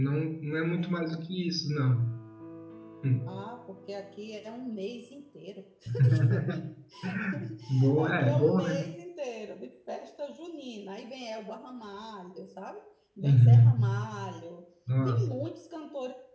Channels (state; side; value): identical; both; correlation 1.00